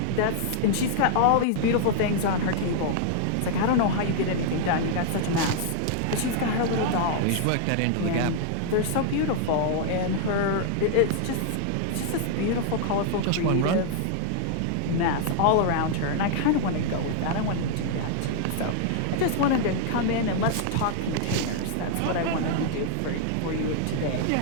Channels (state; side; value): different; both; correlation -0.01